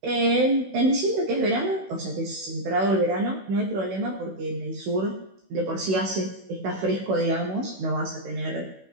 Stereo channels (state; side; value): late; left; 16 ms